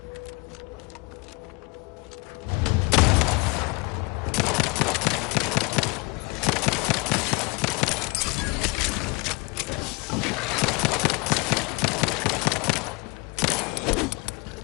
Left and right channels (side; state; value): right; quieter; 27.6 dB